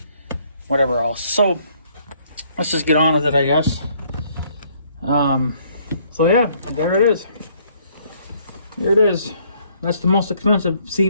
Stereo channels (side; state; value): both; inverted; correlation -0.65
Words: whatever else. So let's just get on with it, I guess. So yeah, there it is. There it is. That's the most expensive